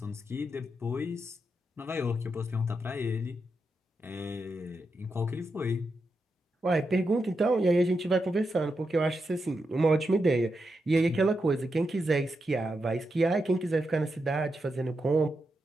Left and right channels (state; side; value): normal; both; correlation 0.86